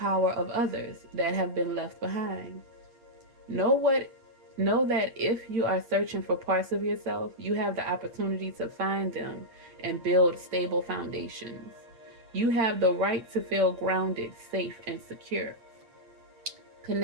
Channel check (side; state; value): left; late; 8.8 ms